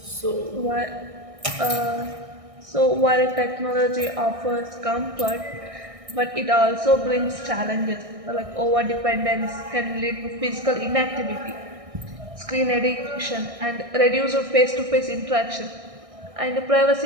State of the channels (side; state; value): left; late; 1.6 ms